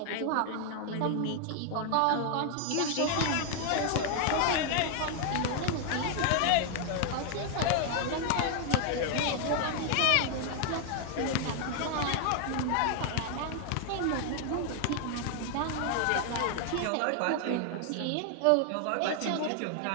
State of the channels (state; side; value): different; both; correlation 0.00